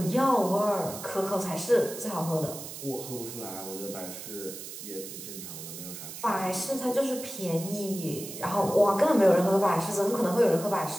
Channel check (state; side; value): noise; right; hiss, 11 dB below the sound